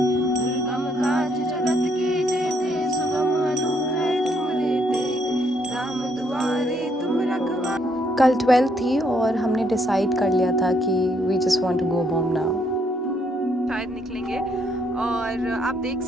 कल 12 थी और हमने डिसाइड कर लिया था कि we just want to go home now. शायद निकलेंगे और आप देख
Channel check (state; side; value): normal; both; correlation 0.71